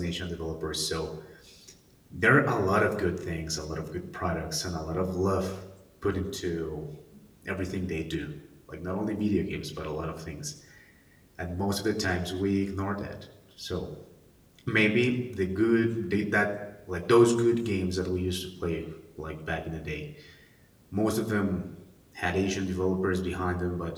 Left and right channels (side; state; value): both; identical; correlation 1.00